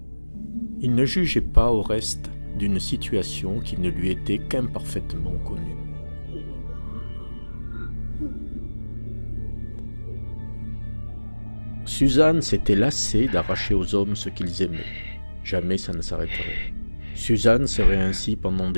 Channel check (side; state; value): both; inverted; correlation -1.00